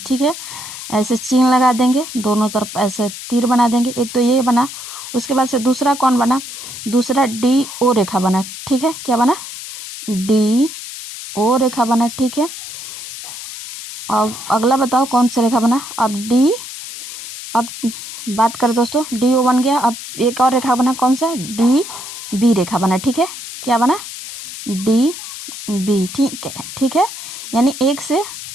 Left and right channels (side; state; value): left; noise; hiss, 10 dB below the sound